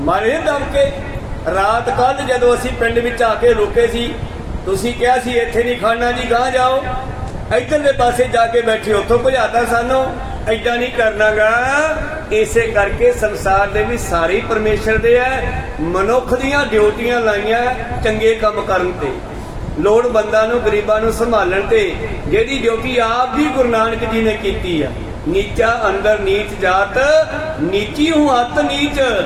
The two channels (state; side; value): identical; both; correlation 1.00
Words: ਮਾਰੇ ਦਮ ਕੇ। ਰਾਤ ਕੱਲ ਜਦੋਂ ਅਸੀਂ ਪਿੰਡ ਵਿੱਚ ਆ ਕੇ ਰੁਕੇ ਸੀ, ਤੁਸੀਂ ਕਿਹਾ ਸੀ ਇੱਥੇ ਨਹੀਂ ਖੜਨਾ ਜੀ, ਗਾਂ ਜਾਓ, ਇੱਧਰਲੇ ਪਾਸੇ ਜਾ ਕੇ ਬੈਠੇ, ਉੱਥੋਂ ਭਜਾਤਾ ਸਾਨੂੰ। ਏਦਾਂ ਨਹੀਂ ਕਰਨਾਗਾ। ਇਸੇ ਕਰਕੇ ਸੰਸਾਰ ਦੇ ਵੀ ਸਾਰੇ ਪਰਮੇਸ਼ਰ ਦੇ ਹੈ। ਮਨੁੱਖ ਦੀਆਂ ਡਿਊਟੀਆਂ ਲਾਈਆਂ ਚੰਗੇ ਕੰਮ ਕਰਨ ਤੇ, ਲੋੜਵੰਦਾਂ ਨੂੰ, ਗਰੀਬਾਂ ਨੂੰ ਸੰਭਾਲਣ ਤੇ। ਜਿਹੜੀ ਡਿਊਟੀ ਆਪ ਵੀ ਗੁਰੂ ਨਾਨਕ ਜੀ ਨੇ ਕੀਤੀ ਆ। ਨੀਚਾ ਅੰਦਰ ਨੀਚ ਜਾਤ, ਨੀਚੀ ਹੂੰ ਅਤ ਨੀਚ,